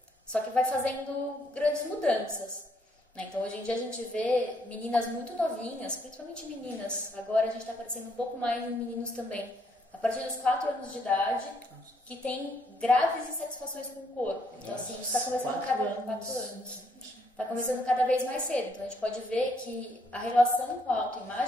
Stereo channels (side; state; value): both; normal; correlation 0.71